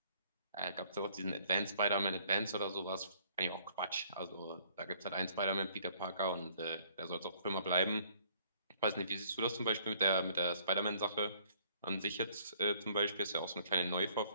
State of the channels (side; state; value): both; inverted; correlation -0.60